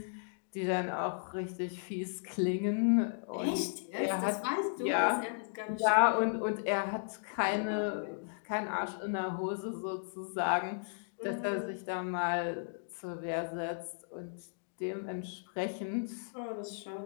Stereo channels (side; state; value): right; silent; digital silence